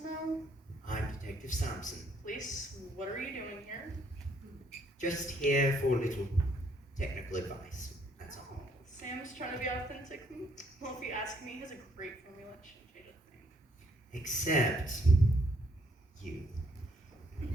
know? I'm Detective Sampson. Please, what are you doing here? Just here for a little technical advice. That's all. Sam's trying to be authentic. Well, if you ask me, he has a great formula. It shouldn't change a thing. Except you.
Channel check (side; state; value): both; normal; correlation 0.68